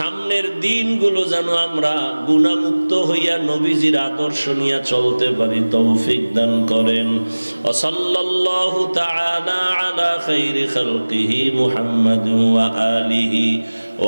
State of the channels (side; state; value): both; inverted; correlation -1.00